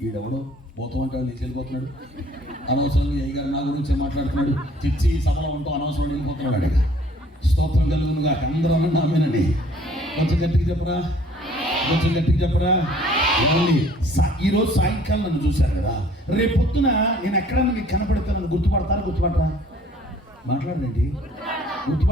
ఈడెవడో పోతాం అంటే నీకు వెళ్ళిపోతున్నాడు. అనవసరంగా ఏ గారు నా గురించే మాట్లాడుతున్నాడు. చిచ్చి సభలో ఉంటూ అనవసరం వెళ్ళిపోతున్నాడు. అడిగా స్తోత్రం కలుగునుగా. అందరూ అన్న ఆమెనండి. కొంచెం గట్టిగా చెప్పరా, కొంచెం గట్టిగా చెప్పరా. ఈరోజు సాయంకాలం నన్ను చూశారు కదా, రేపు పొద్దున నేను ఎక్కడన్నా మీకు కనపడతానని గుర్తుపడతారా? గుర్తుపడరా? మాట్లాడండి.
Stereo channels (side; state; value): both; normal; correlation 0.56